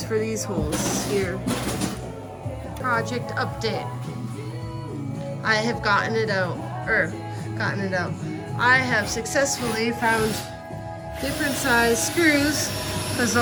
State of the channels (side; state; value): both; identical; correlation 1.00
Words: for these holes here. Project update. I have gotten it out. I have successfully found different size screws because